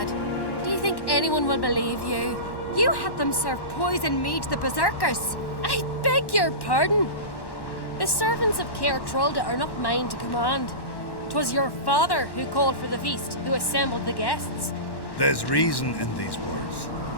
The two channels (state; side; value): late; right; 1.1 ms